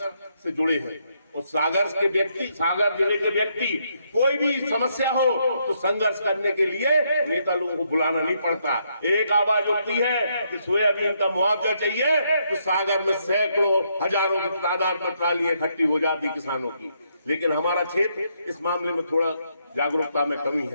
से जुड़े हैं, उस सागर के व्यक्ति, सागर जिले के व्यक्ति, कोई भी समस्या हो तो संघर्ष करने के लिए नेता लोगों को बुलाना नहीं पड़ता। एक आवाज उठती है कि सोयाबीन का मुआवजा चाहिए, तो सागर में सैकड़ों हजारों की तादाद में ट्रालियां इकट्ठी हो जाती किसानों की। लेकिन हमारा क्षेत्र इस मामले में थोड़ा जागरूकता में कमी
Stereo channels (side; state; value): both; inverted; correlation -0.76